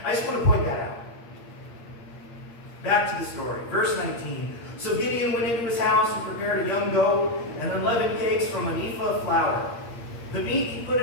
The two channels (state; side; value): late; right; 8.6 ms